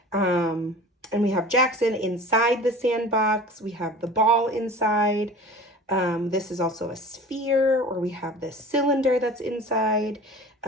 and we have Jackson inside the sandbox. We have the ball inside. This is also a sphere, or we have this cylinder that's inside.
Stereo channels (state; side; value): normal; both; correlation 0.39